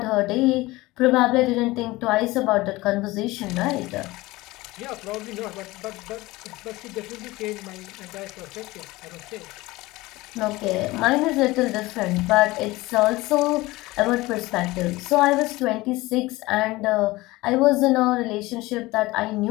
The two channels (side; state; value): right; quieter; 20.1 dB